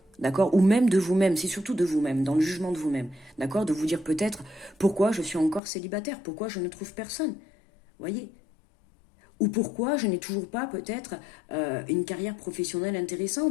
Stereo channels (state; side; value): drops out; right; at 5.6 s